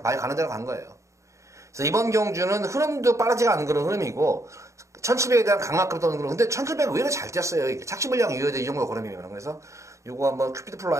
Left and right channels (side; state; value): left; late; 0.15 ms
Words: 말 가는 대로 간 거예요. 그래서 이번 경주는 흐름도 빠르지가 않은 그런 흐름이고, 1700에 대한 강압급도 없는 그런, 근데 1700은 의외로 잘 뛰었어요, 이게. 착시불량 이후에도 이 정도 걸음이면. 그래서, 요거 한번 큐피드